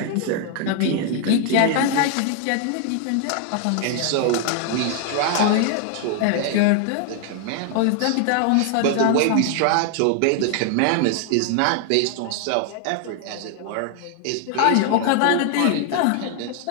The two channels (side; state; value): both; different; correlation 0.00